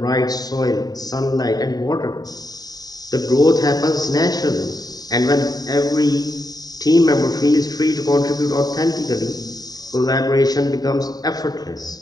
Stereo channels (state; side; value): late; right; 0.18 ms